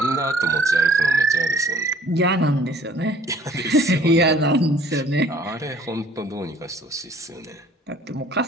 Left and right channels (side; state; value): both; normal; correlation 0.55